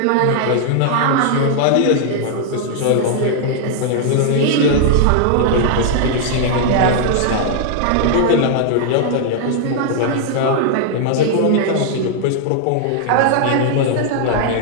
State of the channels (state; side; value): different; both; correlation -0.01